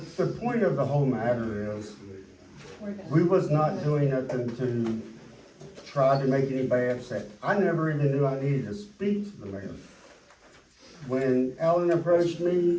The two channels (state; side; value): identical; both; correlation 1.00